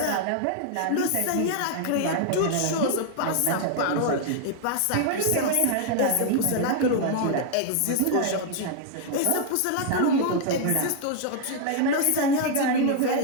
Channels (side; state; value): both; different; correlation 0.00